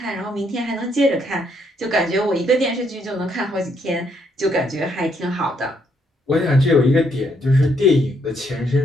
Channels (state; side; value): normal; both; correlation 0.72